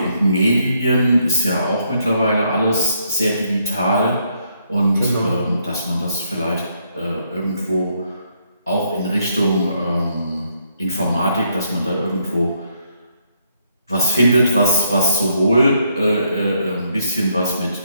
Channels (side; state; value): both; inverted; correlation -0.74